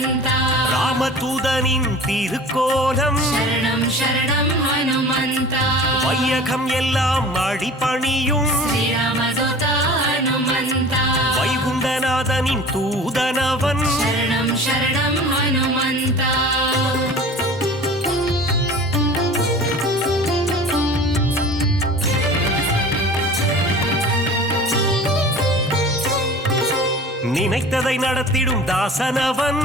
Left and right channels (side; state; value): both; normal; correlation 0.41